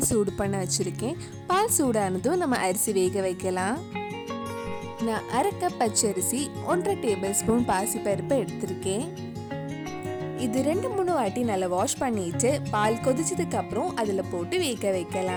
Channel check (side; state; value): both; identical; correlation 1.00